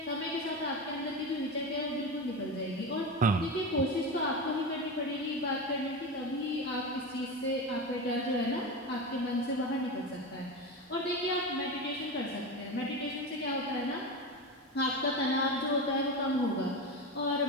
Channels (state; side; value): normal; both; correlation 0.21